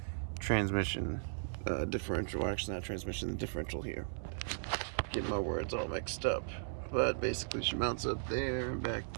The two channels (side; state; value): left; silent; 53 dB below the other